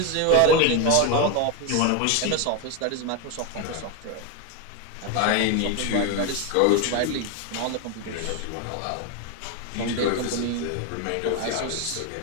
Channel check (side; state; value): both; different; correlation 0.02